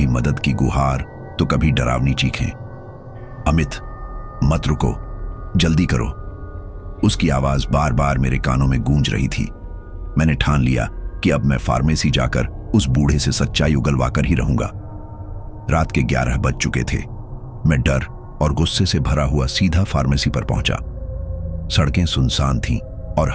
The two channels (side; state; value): both; identical; correlation 1.00